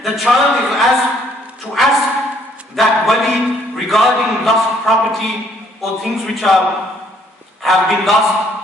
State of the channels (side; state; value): both; normal; correlation 0.65